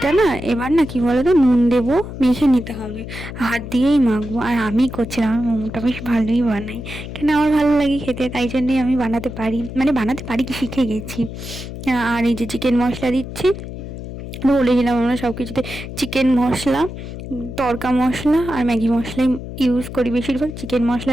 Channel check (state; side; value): noise; left; hum, 10 dB below the sound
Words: না এবার না কি বলো তো, নুন দেবো, মেখে নিতে হবে, হাত দিয়েই মাখবো। আর আমি করছিলাম, আমার মোমোটা বেশ ভালোই বানাই, কেন আমার ভালো লাগে খেতে, তাই জন্যই আমি বানাতে পারি কি, শিখে গেছি। আর এই যে চিকেন মশলা দিচ্ছি, বলেছিলাম আমরা সব কিছুতে চিকেন মশলা, তড়কা মশলা আর ম্যাগি মশলাই ইউজ করি, বেশিরভাগ চিকেন